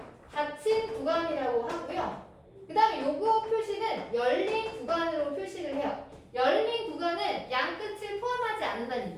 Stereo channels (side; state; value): both; identical; correlation 1.00